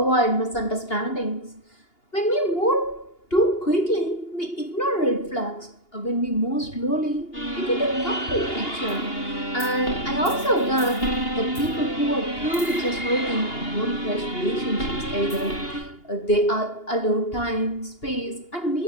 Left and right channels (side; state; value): right; late; 2.8 ms